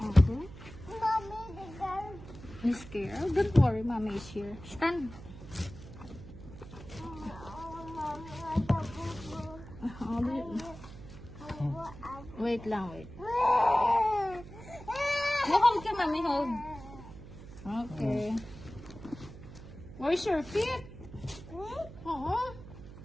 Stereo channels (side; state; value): right; noise; hum, 15 dB below the sound